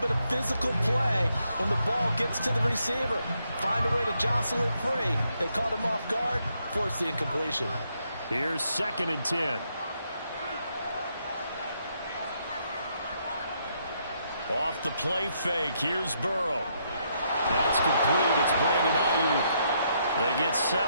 of physical play when the ball gets to the receiver. Find a way to jostle it free. They caught him off guard, force the incompletion. Here's 2nd and 10. Off the play fake, here's Burrow. That's complete. It's Brandon Ayuk. They get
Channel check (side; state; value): both; inverted; correlation -0.76